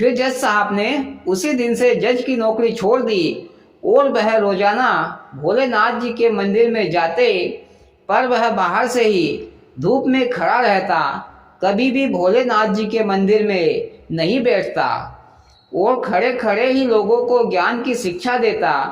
जज साहब ने उसी दिन से जज की नौकरी छोड़ दी और वह रोजाना भोलेनाथ जी के मंदिर में जाते, पर वह बाहर से ही धूप में खड़ा रहता, कभी भी भोलेनाथ जी के मंदिर में नहीं बैठता और खड़े खड़े ही लोगों को ज्ञान की शिक्षा देता।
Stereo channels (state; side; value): identical; both; correlation 1.00